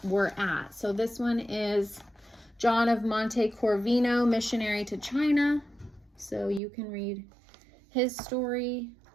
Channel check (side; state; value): left; drops out; at 6.6 s